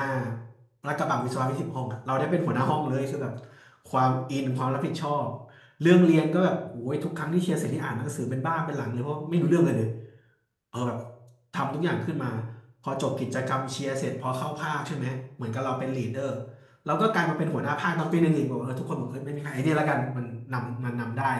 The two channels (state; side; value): identical; both; correlation 1.00